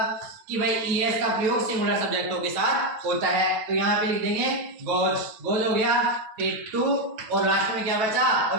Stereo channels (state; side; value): late; left; 9.2 ms